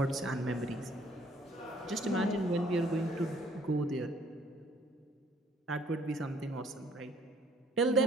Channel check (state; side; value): normal; both; correlation 0.60